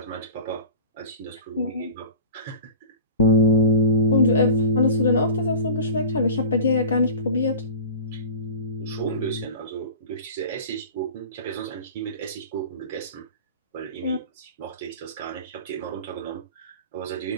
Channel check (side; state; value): both; inverted; correlation -0.36